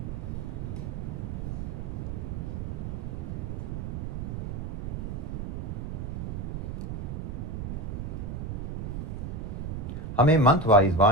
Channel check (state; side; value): noise; right; rumble, 4 dB below the sound